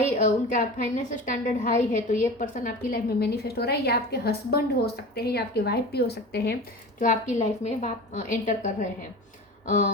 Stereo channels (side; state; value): both; normal; correlation 0.33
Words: उनका फाइनेंशियल स्टैंडर्ड हाई है तो ये पर्सन आपकी लाइफ में मैनिफेस्ट हो रहा है। या आपके हस्बैंड हो सकते हैं या आपके वाइफ भी हो सकते हैं जो आपकी लाइफ में एंटर कर रहे